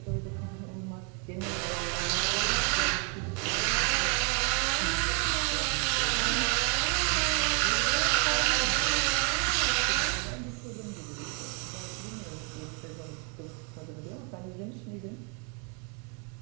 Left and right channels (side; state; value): left; quieter; 34.9 dB